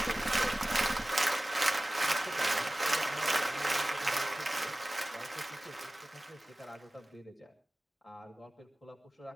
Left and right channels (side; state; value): both; normal; correlation 0.97